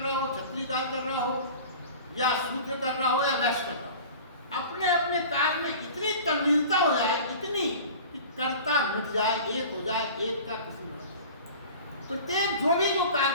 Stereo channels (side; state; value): both; inverted; correlation -0.40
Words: हो, क्षत्रिय कार्य कर रहा हो, या शूद्र कर रहा हो या वैश्य कर रहा हो, अपने अपने कार्य में इतनी तल्लीनता हो जाए, इतनी कि कर्ता मिट जाए, एक हो जाए, एक का किसी में प्रत्येक जो भी जो कार्य